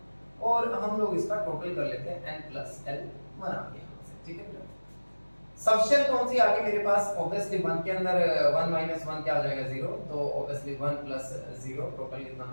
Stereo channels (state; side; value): inverted; both; correlation -1.00